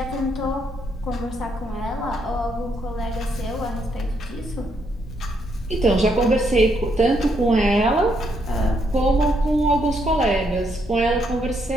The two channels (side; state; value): both; normal; correlation 0.75